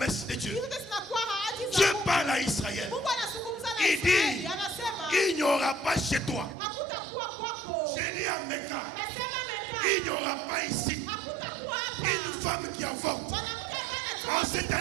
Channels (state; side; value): drops out; left; at 6.6 s